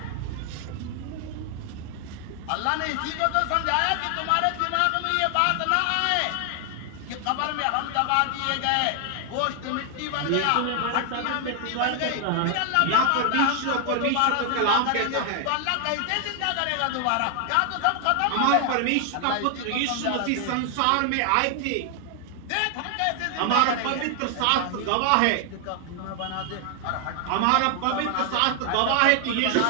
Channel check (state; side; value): different; both; correlation 0.00